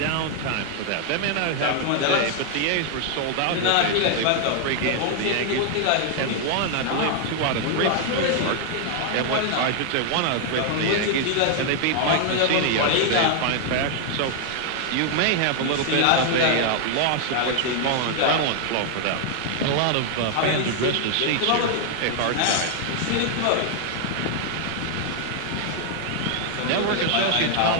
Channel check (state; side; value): different; both; correlation 0.00